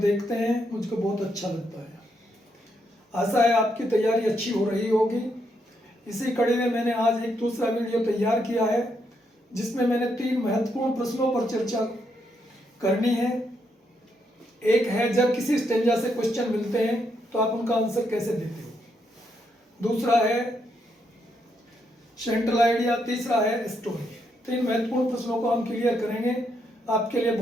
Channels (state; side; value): normal; both; correlation 0.78